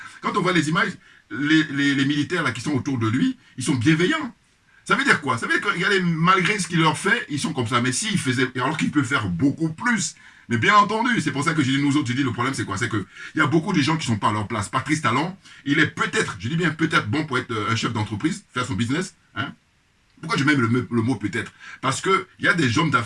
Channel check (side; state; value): both; identical; correlation 1.00